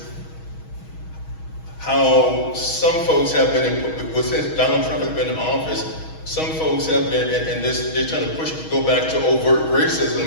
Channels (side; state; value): right; late; 6.3 ms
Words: how some folks have been, since Donald Trump has been in office, some folks have been, and they're trying to go back to overt